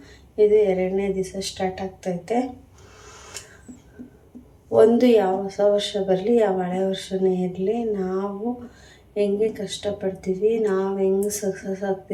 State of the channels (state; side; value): identical; both; correlation 1.00